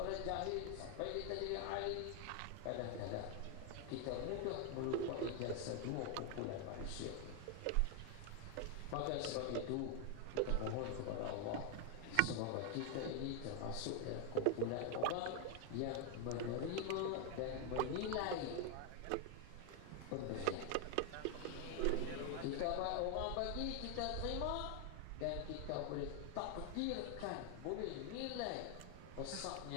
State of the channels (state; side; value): different; both; correlation 0.00